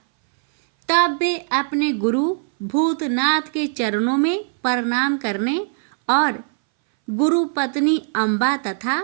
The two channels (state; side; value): silent; left; 62 dB below the other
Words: तब वे अपने गुरु भूतनाथ के चरणों में प्रणाम करने और गुरु पत्नी अम्बा तथा